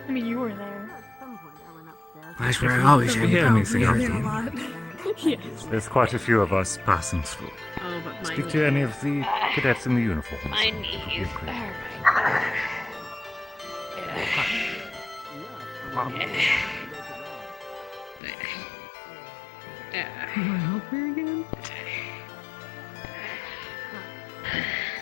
I mean, you were there. That's where I always had anything else. Yes. There's quite a few of us passing through. Speak to any of the cadets in the uniforms. My knees. You want help here again?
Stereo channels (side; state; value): right; drops out; at 18.2 s